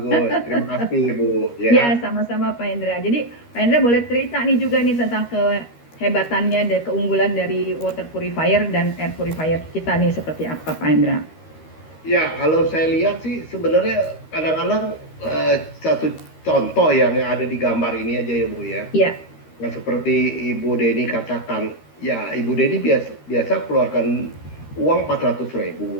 Terima kasih, Bu. Ya Ya. sama-sama Pak Hendra. Jadi Pak Hendra boleh cerita nih juga nih tentang kehebatannya dan keunggulan dari water purifier dan air purifier kita nih seperti apa Pak Hendra. Ya, kalau saya lihat sih sebenarnya kadang-kadang satu contoh yang ada di gambar ini aja ya, Bu ya. Iya, Yang seperti Ibu Deni katakan, ya Ibu Deni biasa keluarkan uang 400.000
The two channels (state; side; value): late; right; 13 ms